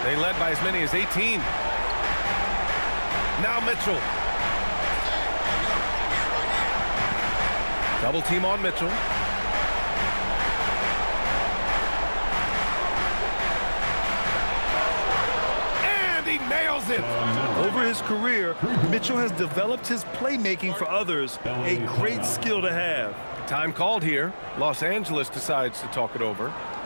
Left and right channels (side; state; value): both; inverted; correlation -1.00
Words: They led by as many as 18. Now Mitchell. Double team on Mitchell. And he nails it. Over his career, Mitchell has developed his playmaking for others, a great skill to have. Time called here. Los Angeles decides to talk it over.